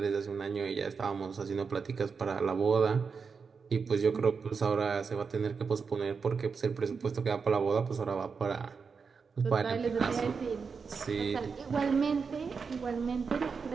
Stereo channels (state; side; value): quieter; left; 5.4 dB